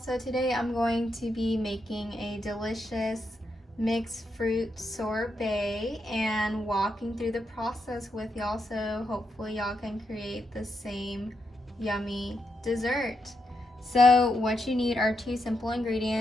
today I'm going to be making a delicious mixed fruit sorbet and walking through the process with y'all, so hopefully y'all can create the same yummy dessert. So what you need are two simple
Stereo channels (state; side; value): normal; both; correlation 0.82